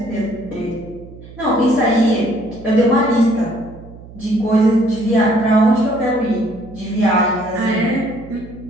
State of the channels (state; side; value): noise; right; hum, 18 dB below the sound